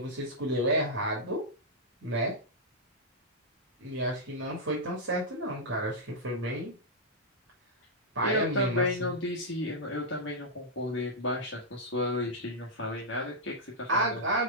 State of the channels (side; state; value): both; normal; correlation -0.07